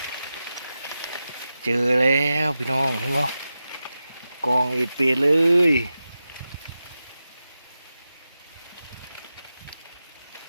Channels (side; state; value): both; inverted; correlation -0.92